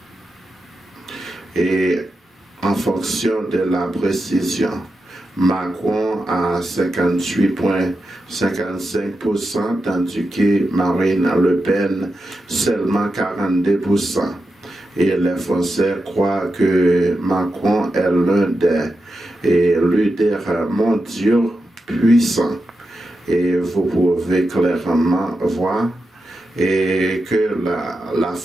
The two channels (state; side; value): normal; both; correlation 0.89